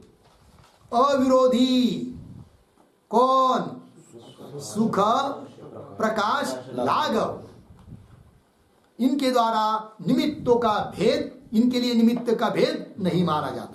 अविरोधी कौन? सुख प्रकाश लाघव, इनके द्वारा निमित्तों का भेद, इनके लिए निमित्त का भेद नहीं माना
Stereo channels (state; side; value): identical; both; correlation 1.00